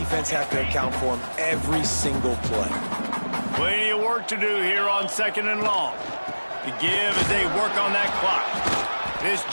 have to account for him every single play. Plenty of work to do here on 2nd and long. The give as they work on that clock. This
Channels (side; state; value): both; inverted; correlation -1.00